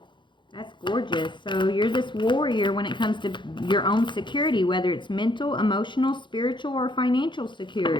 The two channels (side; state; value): right; late; 0.23 ms